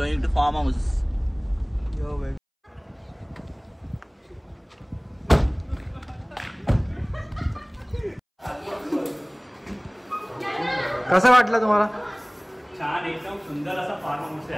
to farm house. Yo baby. कसं वाटलं तुम्हाला? छान एकदम सुंदर असा फार्म हाऊस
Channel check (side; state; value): both; identical; correlation 1.00